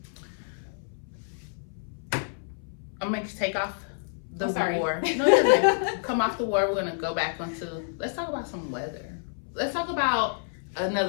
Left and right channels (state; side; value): silent; right; 58 dB below the other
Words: I'm gonna take off the Oh, sorry. war. No, you're good. Come off the war. We're gonna go back onto. Let's talk about some weather. Let's talk about